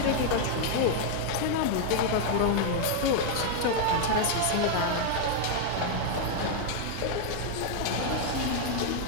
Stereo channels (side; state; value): both; different; correlation 0.00